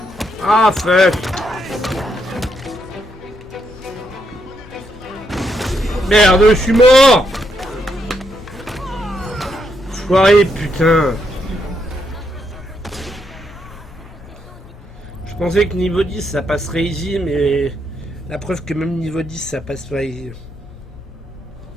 Ah fuck. Merde, je suis mort. Foiré, putain. Je pensais que niveau 10 ça passerait easy, mais la preuve que même niveau 10 ça passe pas easy.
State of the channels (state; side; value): normal; both; correlation 0.78